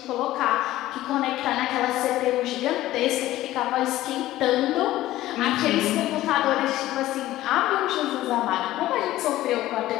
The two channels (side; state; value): right; quieter; 15.3 dB